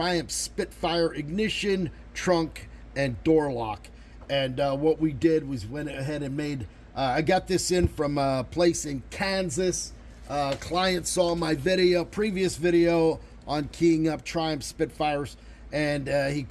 Spitfire ignition, trunk, and door lock. And what we did was went ahead and made, I got this in from a place in Kansas. Client saw my previous video on keying up Triumph Spitfires, and he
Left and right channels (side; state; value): both; identical; correlation 1.00